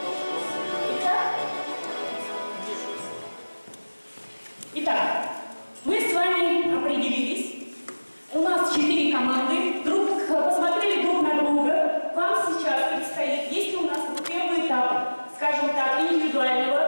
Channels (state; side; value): inverted; both; correlation -1.00